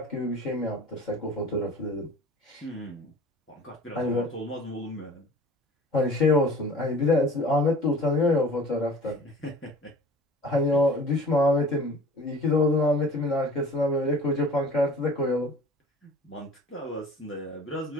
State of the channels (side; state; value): both; normal; correlation 0.45